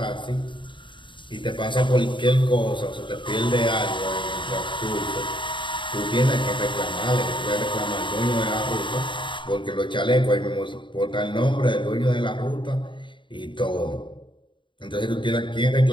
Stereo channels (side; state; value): right; late; 0.23 ms